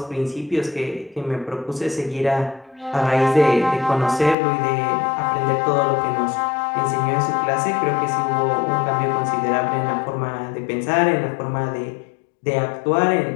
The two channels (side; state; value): right; drops out; at 4.4 s